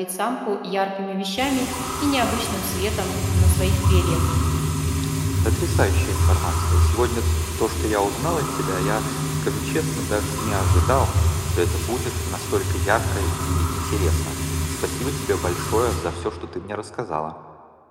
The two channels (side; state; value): both; identical; correlation 1.00